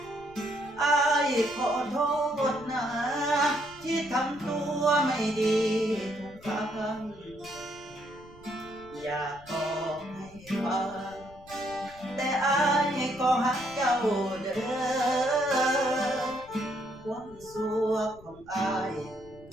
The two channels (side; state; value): left; noise; rumble, 22 dB below the sound